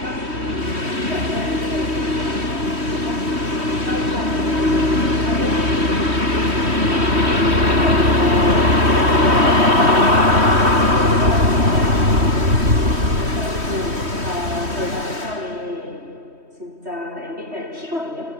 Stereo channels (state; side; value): late; left; 3.1 ms